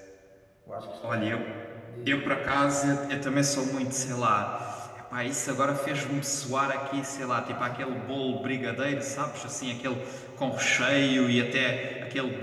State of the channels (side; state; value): both; identical; correlation 1.00